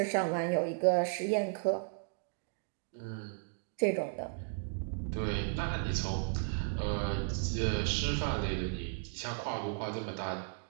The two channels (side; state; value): left; silent; digital silence